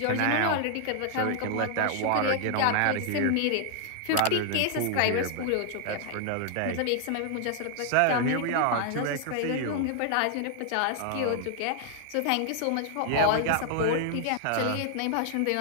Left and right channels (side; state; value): both; different; correlation 0.00